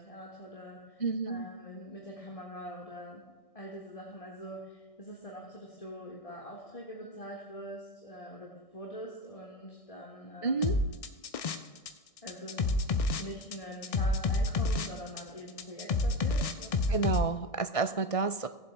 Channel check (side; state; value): right; late; 1.6 ms